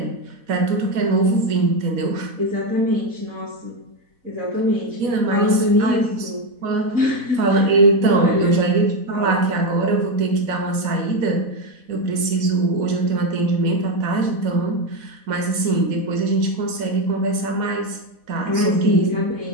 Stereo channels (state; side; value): late; left; 4.1 ms